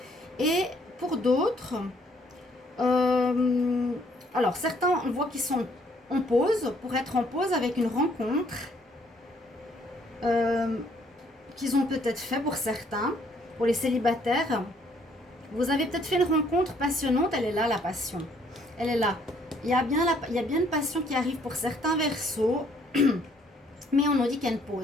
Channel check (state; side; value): normal; both; correlation 0.65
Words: Et pour d'autres, alors certains, on voit qu'ils sont en pause, pour être en pause avec une rencontre qu'ils ont peut-être fait pour certains, pour les célibataires. Vous avez peut-être fait une rencontre passionnante, elle est là la passion, elle est là. Il y a bien une passion qui arrive pour certains Verseaux, mais on nous dit qu'il y a une